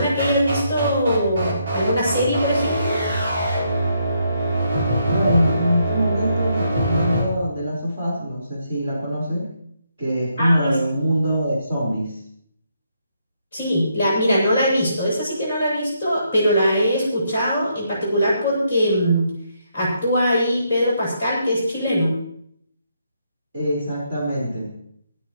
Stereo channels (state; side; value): inverted; both; correlation -0.76